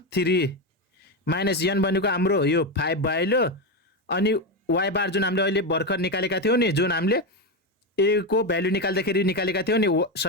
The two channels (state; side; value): normal; both; correlation 0.12